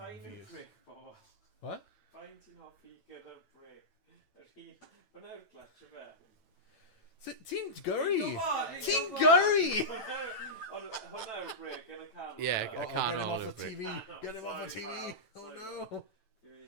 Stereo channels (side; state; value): right; late; 9.0 ms